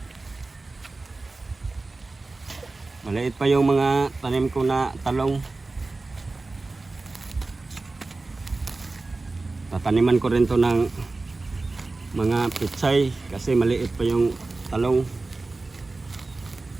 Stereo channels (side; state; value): left; quieter; 3.4 dB